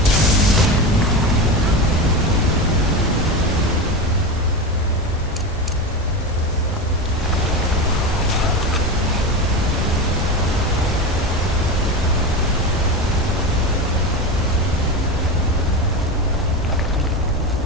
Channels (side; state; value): both; normal; correlation 0.22